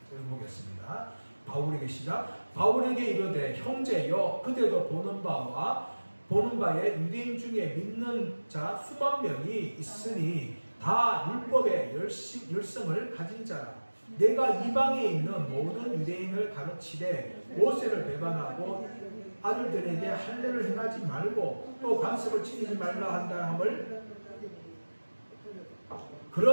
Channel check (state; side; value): inverted; both; correlation -1.00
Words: 읽어보겠습니다. 바울에게 시작. 바울에게 이르되 형제여, 그대도 보는 바에 유대인 중에 믿는 자 수만 명이 있으니 다 율법의 열성을 가진 자라. 내가 이방에 있는 모든 유대인을 가르치되 모세를 배반하고 아들들에게 할례를 행하지 말고 또 관습을 지키지 말라 한다 함을